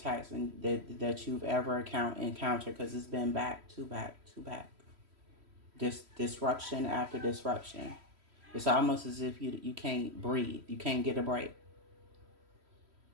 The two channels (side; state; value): left; late; 3.1 ms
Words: that you've ever encountered, because it's been back to back to back. This disruption after disruption. It's almost as if you can't breathe. You can't get a break.